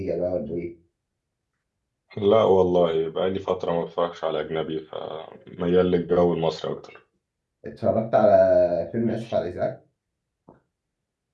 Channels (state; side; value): identical; both; correlation 1.00